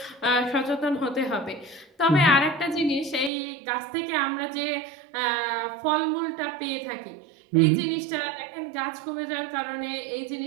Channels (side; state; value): left; drops out; at 3.3 s